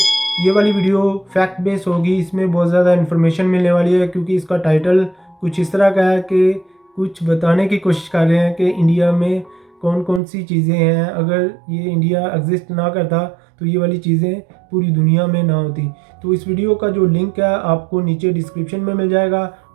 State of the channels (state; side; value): drops out; left; at 10.2 s